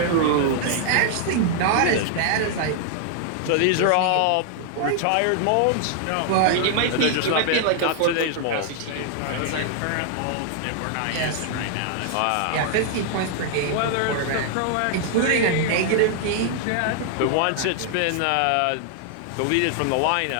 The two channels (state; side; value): different; both; correlation 0.00